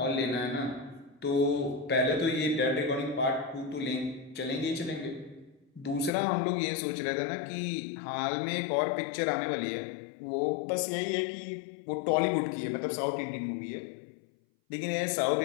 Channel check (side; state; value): right; drops out; at 6.1 s